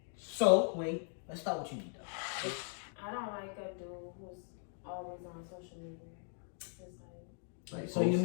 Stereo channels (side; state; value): right; silent; 52 dB below the other